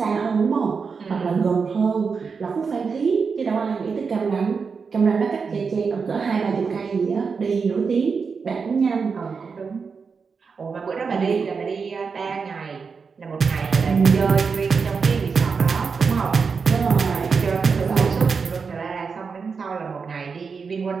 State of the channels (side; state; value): left; quieter; 5.3 dB